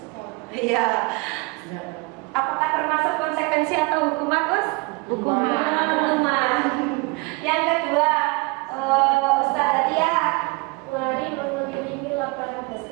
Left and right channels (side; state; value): left; quieter; 27.1 dB